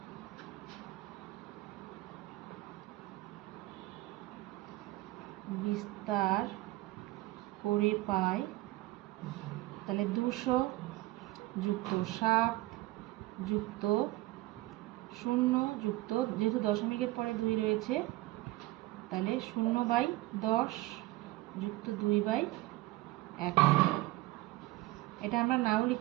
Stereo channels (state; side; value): quieter; left; 18.9 dB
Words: বিস্তার করে পাই, তাহলে 200 যুক্ত 7 যুক্ত 0 যুক্ত, যেহেতু দশমিকের পরে 2 রয়েছে তাহলে 0/10 যুক্ত 2/100। এটা আমরা নাও